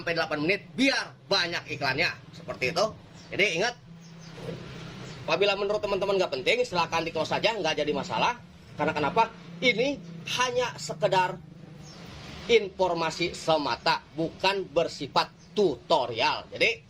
8 menit biar banyak iklannya. Seperti itu. Jadi ingat, apabila menurut teman-teman nggak penting, silahkan di close saja, nggak jadi masalah. Karena kenapa? Ini hanya sekedar informasi semata, bukan bersifat tutorial. Jadi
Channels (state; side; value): identical; both; correlation 1.00